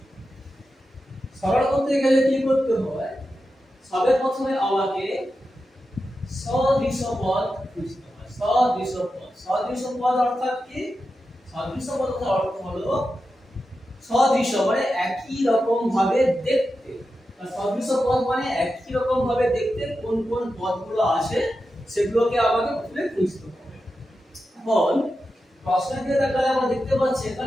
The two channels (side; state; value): both; normal; correlation 0.90